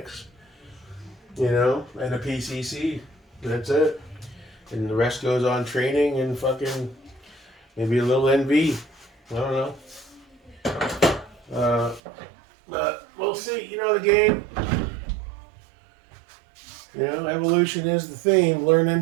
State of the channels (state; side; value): drops out; left; at 12.0 s